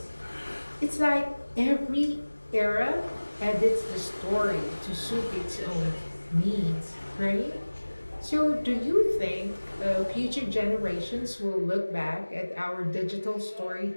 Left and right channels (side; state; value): both; inverted; correlation -1.00